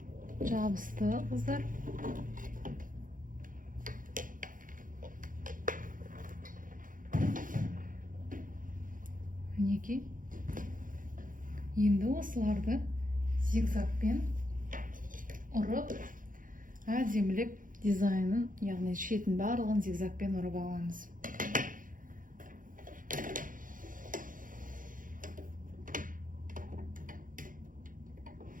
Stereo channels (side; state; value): left; late; 0.39 ms